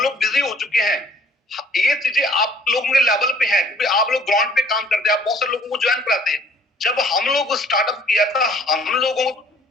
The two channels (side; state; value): both; normal; correlation 0.56